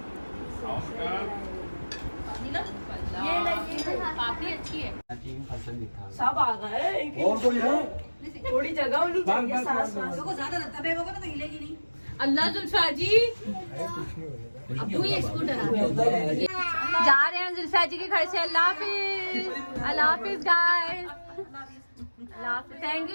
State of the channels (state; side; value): inverted; both; correlation -1.00